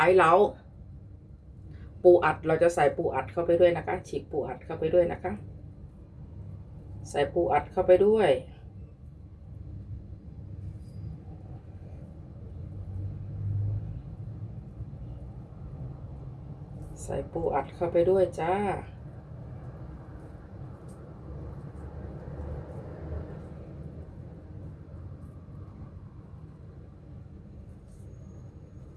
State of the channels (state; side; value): identical; both; correlation 1.00